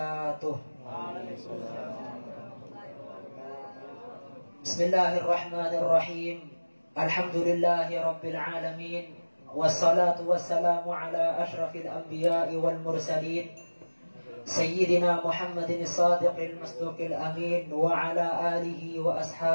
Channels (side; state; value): both; inverted; correlation -1.00